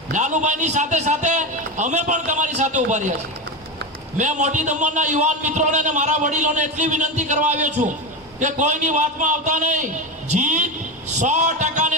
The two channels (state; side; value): normal; both; correlation 0.18